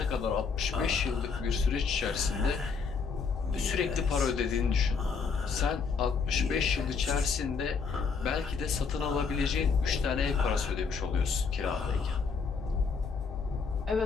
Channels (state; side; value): quieter; right; 5.4 dB